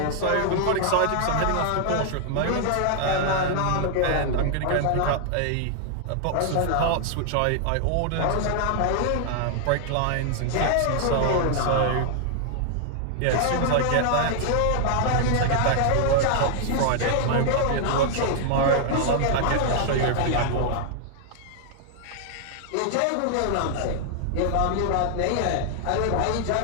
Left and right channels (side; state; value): both; different; correlation 0.00